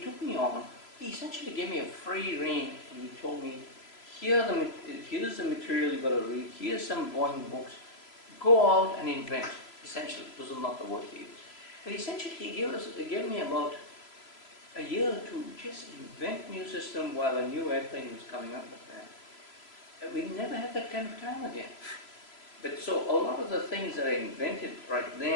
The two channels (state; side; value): late; right; 3.0 ms